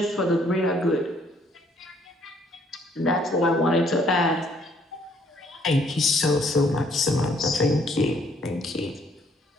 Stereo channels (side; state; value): both; normal; correlation 0.65